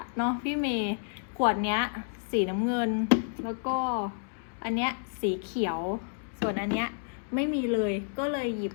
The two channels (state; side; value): silent; right; digital silence